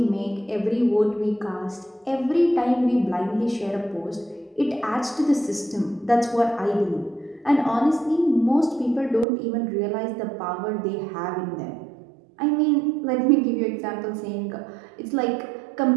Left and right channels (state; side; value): drops out; left; at 9.2 s